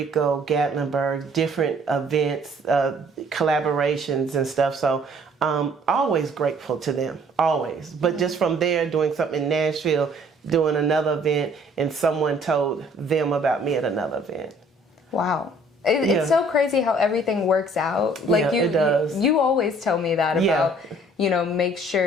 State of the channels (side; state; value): both; normal; correlation 0.58